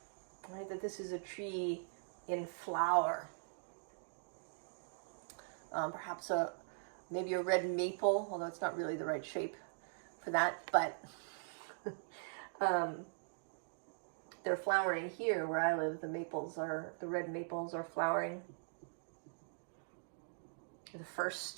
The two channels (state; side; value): silent; left; digital silence